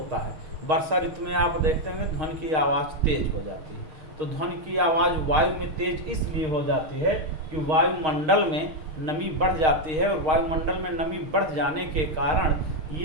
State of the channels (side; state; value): left; late; 6.4 ms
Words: है। वर्षा ऋतु में आप देखते होंगे ध्वनि की आवाज़ तेज हो जाती है। तो ध्वनि की आवाज़ वायु में तेज इसलिए हो जाती है कि वायुमंडल में नमी बढ़ जाती है, और वायुमंडल में नमी बढ़ जाने के कारण